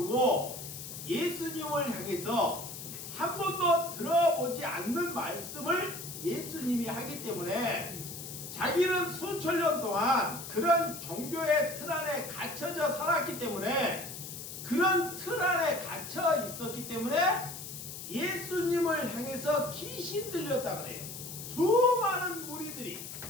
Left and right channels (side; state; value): left; noise; hiss, 10 dB below the sound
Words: 예수님을 향해서 한 번도 들어보지 않는 말씀을 예수님이 하기 때문에 자기는 수천 년 동안 그런 종교의 틀 안에 갇혀져 살았기 때문에, 그런 틀 안에 갇혀 있었기 때문에 예수님을 향해서 귀신 들렸다 그래요. 수많은 무리들이.